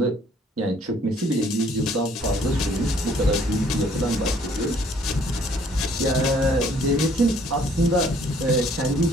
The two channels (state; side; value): normal; both; correlation 0.60